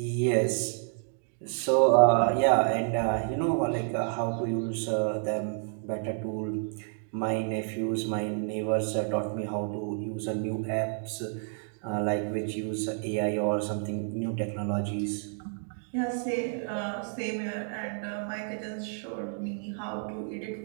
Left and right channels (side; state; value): left; silent; 58 dB below the other